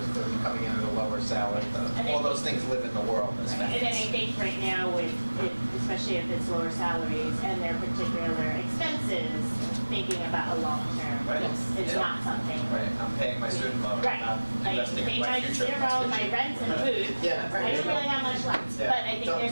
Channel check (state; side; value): inverted; both; correlation -1.00